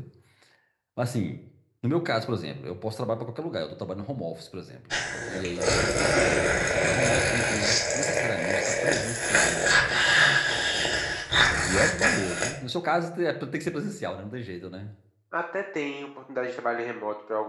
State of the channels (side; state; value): both; identical; correlation 1.00